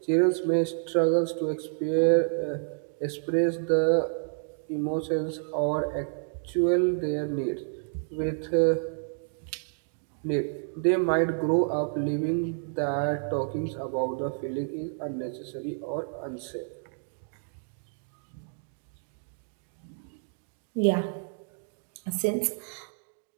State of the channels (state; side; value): silent; left; digital silence